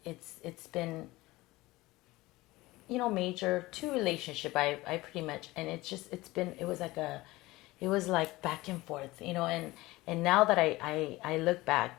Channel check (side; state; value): right; quieter; 19.7 dB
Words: been major 2 relationship. I pretty much, and it was like back and forth, and now that I look back,